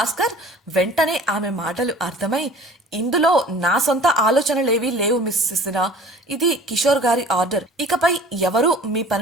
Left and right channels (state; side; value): normal; both; correlation 0.46